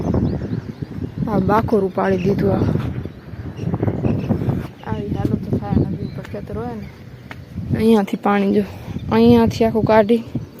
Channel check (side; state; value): both; identical; correlation 1.00